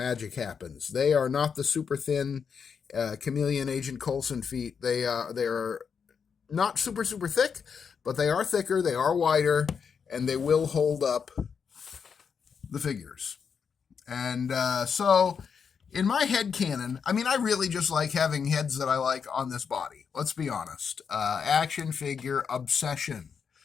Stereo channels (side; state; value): right; quieter; 6.4 dB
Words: happens. They are not the super thin Chameleon Agent Coulson feet. They are not super thick, but they are thicker, they are wider, and they will hold up the figures. And so in my head canon, I mean, I really just like having heads that I like on this body. Let's be honest. Action figure obsession.